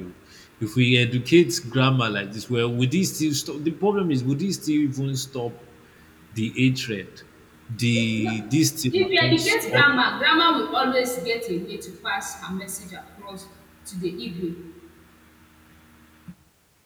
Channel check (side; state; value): both; identical; correlation 1.00